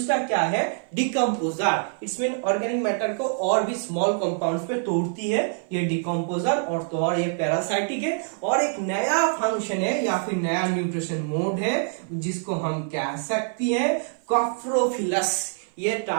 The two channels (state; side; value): silent; left; 56 dB below the other